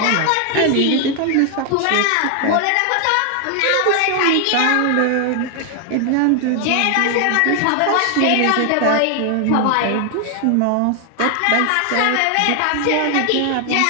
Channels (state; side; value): different; both; correlation 0.00